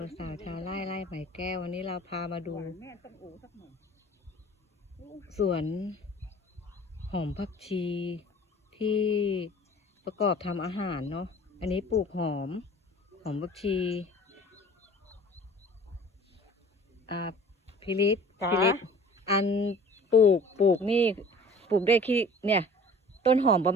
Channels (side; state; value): both; normal; correlation 0.47